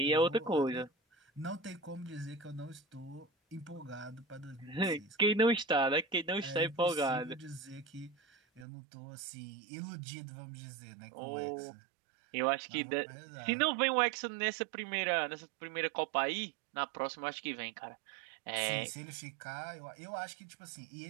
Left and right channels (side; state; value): left; drops out; at 8.7 s